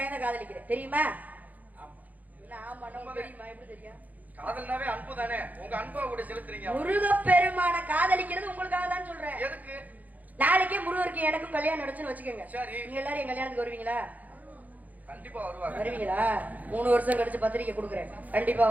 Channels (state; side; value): late; left; 0.079 ms